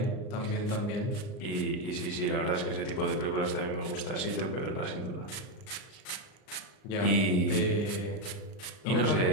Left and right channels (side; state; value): right; late; 38 ms